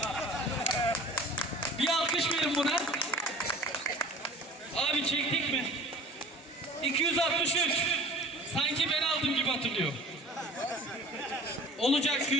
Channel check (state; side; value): normal; both; correlation 0.43